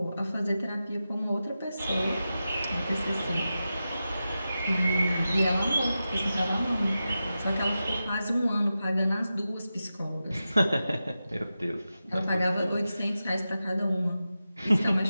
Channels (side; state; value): both; inverted; correlation -0.92